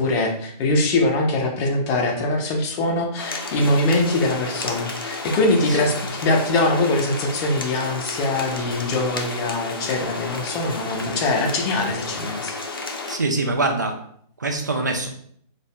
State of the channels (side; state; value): both; inverted; correlation -0.34